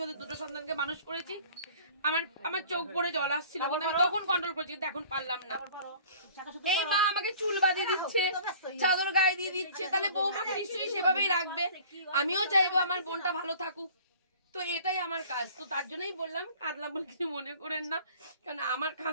ওদের দুটো সন্তানকে মানুষ করেছি, আমার চোখ পড়ে জল আসছিল, আমি তখন কন্ট্রোল করেছি, কিন্তু এখন পারলাম না। এই মা আমাকে চুল বাঁধিয়ে দিচ্ছে, চাদর গায়ে দিয়ে দিচ্ছে, তাহলে বৌমাকে নিশ্চয়ই সেভাবেই রাখবে। আমিও চাইবো আমার বোনটা ভালো থাকুক, তো এটাই আমার কাজ। তো তার জন্যই বললাম, কাঁদলাম বলে কিছু মনে করেন না, কারণ আমার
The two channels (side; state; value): both; inverted; correlation -0.48